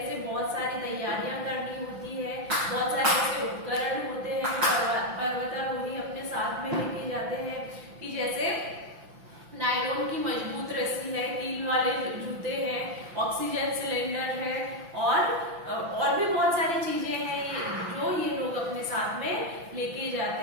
से बहुत सारी तैयारियां करनी होती है, बहुत सारे ऐसे उपकरण होते हैं जो पर्वतारोही अपने साथ में लेके जाते हैं कि जैसे नायलॉन की मजबूत रस्सी है, कील वाले जूते हैं, ऑक्सीजन सिलेंडर है और भी बहुत सारी चीजें हैं जो ये लोग अपने साथ में लेके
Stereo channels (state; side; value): late; left; 5.9 ms